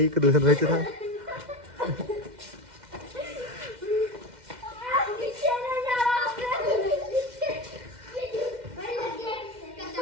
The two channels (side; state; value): left; late; 2.1 ms